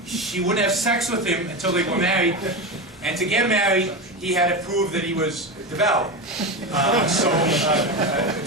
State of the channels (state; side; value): normal; both; correlation 0.19